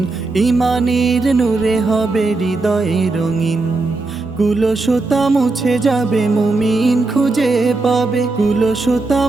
ইমানের নূরে হবে হৃদয়ে রঙিন। কুলসতা মুছে যাবে মুমিন খুঁজে পাবে, কুলসতা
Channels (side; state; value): left; quieter; 3.4 dB